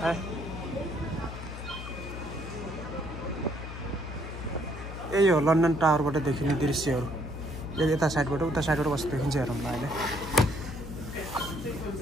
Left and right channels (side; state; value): left; noise; hum, 9 dB below the sound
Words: हाय। यही हो लन्डन टावरबाट देखिने दृश्यहरू। यता साइडबाट उता साइडबाट कस्तो देखिन्छ हेरौँ ल अहिले।